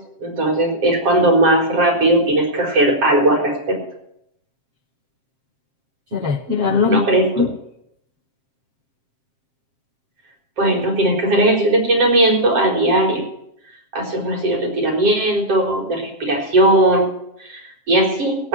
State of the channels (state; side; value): late; left; 7.5 ms